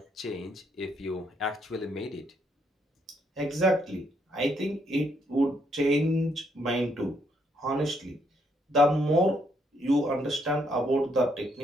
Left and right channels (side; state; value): both; normal; correlation 0.73